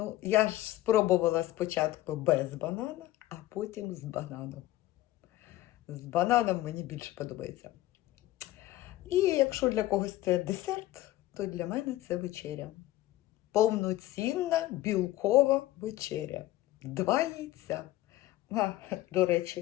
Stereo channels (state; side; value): quieter; right; 15.8 dB